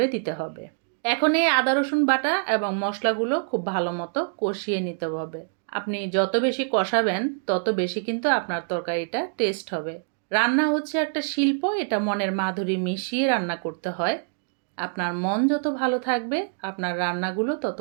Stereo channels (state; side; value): silent; left; digital silence